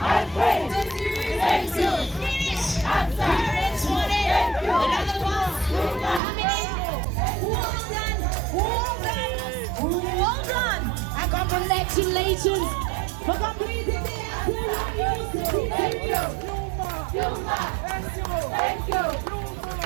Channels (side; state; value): left; drops out; at 6.2 s